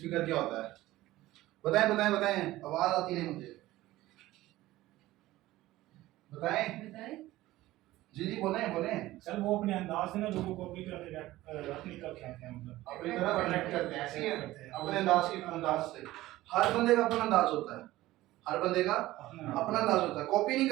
क्या होता है? बताएं बताएं बताएं, आवाज आती नहीं मुझे, बताएं। जी जी बोलें बोलें। सर वो अपने अंदाज से ना लोगों को अपनी तरफ अपनी तरफ खींचते हैं, मतलब अपनी तरफ अट्रैक्ट करते हैं, ऐसे ही है अपने अंदाज से। हर बंदे का अपना अंदाज होता है, हर बंदे का अपना अंदाज होता है, कॉपी नहीं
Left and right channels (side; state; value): left; quieter; 16.7 dB